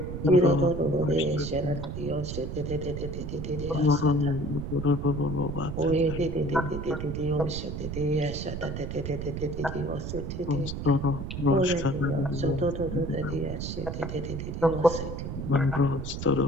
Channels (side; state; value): right; noise; rumble, 5 dB below the sound